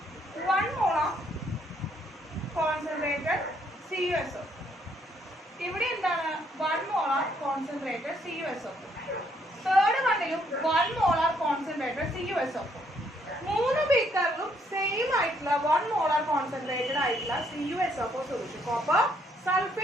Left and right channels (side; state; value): both; normal; correlation 0.70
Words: 1 മോളാർ കോൺസെൻട്രേറ്റഡ് CuSO. ഇവിടെ എന്താണ് 1 മോളാർ കോൺസെൻട്രേറ്റഡ് CuSO. തേർഡ് വണ്ണിലും 1 മോളാർ കോൺസെൻട്രേറ്റഡ് ആയിട്ടുള്ള 1 മോളാർ കോൺസെൻട്രേറ്റഡ് ആയിട്ടുള്ള CuSO4 solution copper